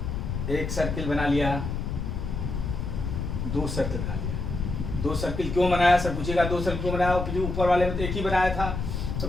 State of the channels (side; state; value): left; noise; rumble, 3 dB below the sound